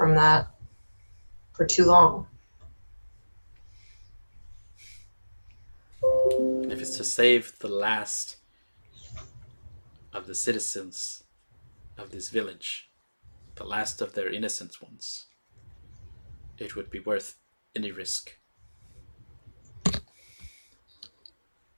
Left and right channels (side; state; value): both; inverted; correlation -1.00